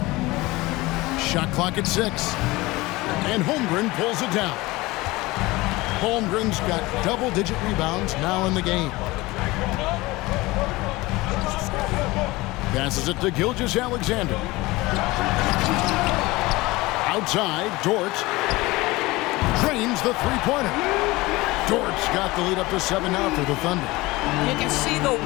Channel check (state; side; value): quieter; right; 20.9 dB